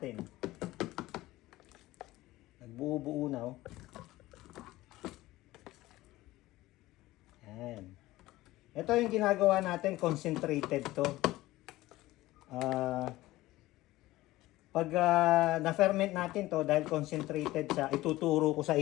Nagbuo-buo na, oh. Yan. Ito yung ginagawa natin, concentrated to. Pag na-ferment natin to, dahil concentrated siya, ituturo ko sa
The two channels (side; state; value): right; quieter; 17.5 dB